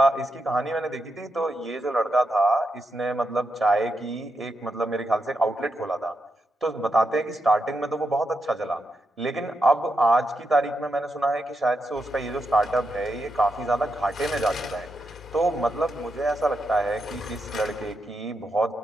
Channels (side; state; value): both; normal; correlation 0.84